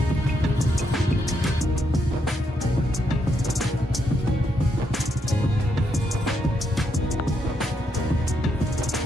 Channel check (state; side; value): normal; both; correlation 0.78